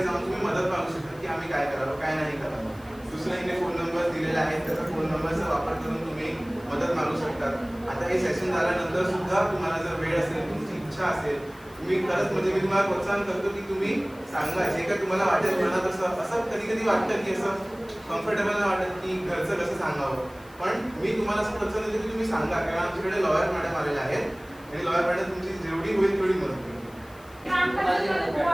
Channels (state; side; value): noise; left; hiss, 26 dB below the sound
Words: जाऊन तुम्ही मदत मागू शकता की आम्ही काय करावं काय नाही करावं. दुसऱ्याने फोन नंबर दिलेला आहे त्याचा फोन नंबरचा वापर करून तुम्ही मदत मागू शकतात. आता हे सेशन झाल्यानंतर सुद्धा तुम्हाला जर वेळ असेल तुमची इच्छा असेल तुम्ही खरंच म्हणजे मी तुम्हाला प्रोत्साहन करतो की तुम्ही सांगा जे काय तुम्हाला वाटेल मनात असं कधी कधी वाटतं की असं कम्फर्टेबल नाही वाटत की घरचं कसं सांगावं. पण मी तुम्हाला असं प्रोत्साहन देतो की तुम्ही सांगा कारण आमच्याकडे लॉयर मॅडम आलेल्या आहेत आणि लॉयर मॅडम तुमची जेवढी होईल तेवढी मदत करेल.